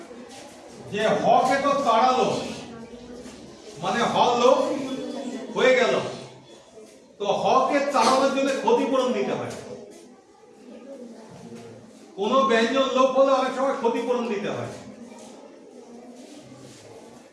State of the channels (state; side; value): identical; both; correlation 1.00